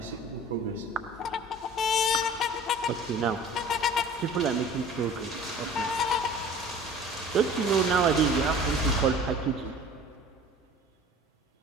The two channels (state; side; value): normal; both; correlation 0.45